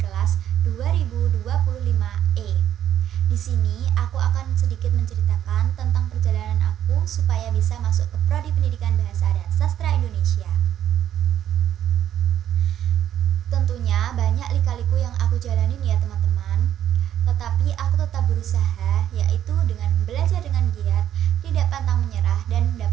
kelas 2025E. Di sini aku akan sedikit menceritakan tentang perjalanan aku supaya bisa masuk ke Prodi Pendidikan Bahasa dan Sastra Indonesia. Tentunya banyak lika-liku yang aku jalanin ya teman-teman. Tetapi aku tetap berusaha, yaitu dengan belajar dengan giat, tidak pantang menyerah, dan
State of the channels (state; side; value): quieter; left; 10.8 dB